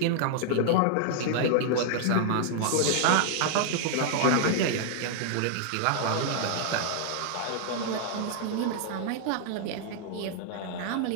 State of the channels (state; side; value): different; both; correlation 0.00